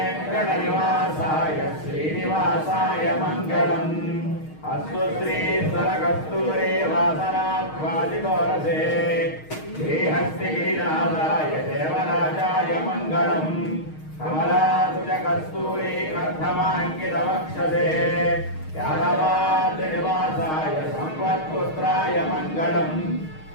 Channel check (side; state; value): right; late; 6.4 ms